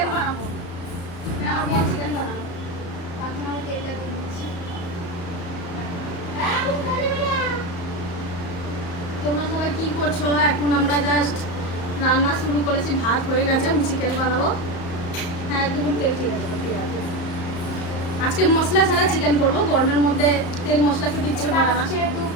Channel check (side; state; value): right; late; 35 ms